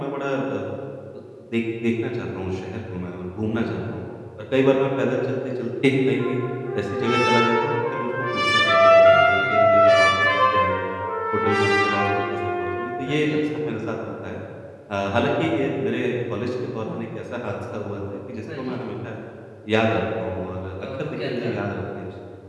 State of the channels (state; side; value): identical; both; correlation 1.00